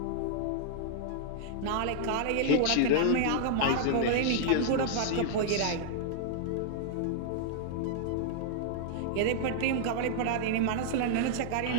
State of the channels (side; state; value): both; different; correlation -0.01